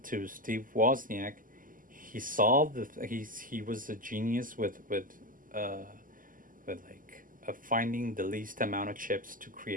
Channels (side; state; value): left; late; 0.40 ms